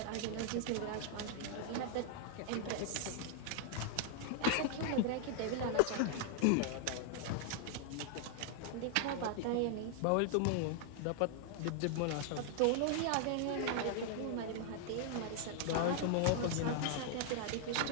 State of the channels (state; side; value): different; both; correlation 0.00